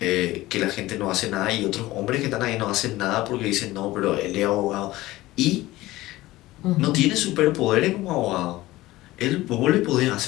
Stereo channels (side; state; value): right; quieter; 17.8 dB